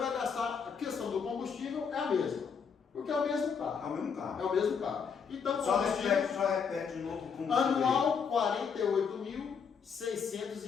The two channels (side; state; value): right; quieter; 6.3 dB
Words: gastar, a questão do combustível é a mesma. Porque é o mesmo carro. É o mesmo carro. É o mesmo carro. Então, só repete de novo o combustível. Anual, R$